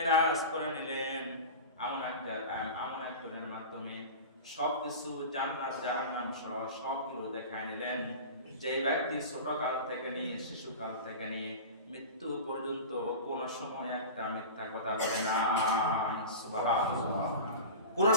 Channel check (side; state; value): both; inverted; correlation -0.31